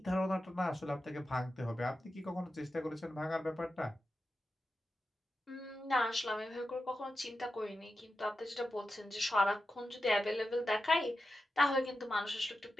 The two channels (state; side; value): normal; both; correlation 0.90